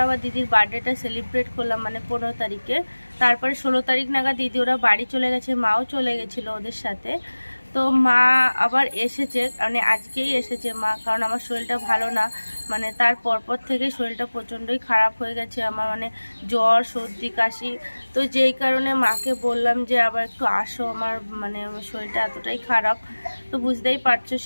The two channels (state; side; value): inverted; both; correlation -1.00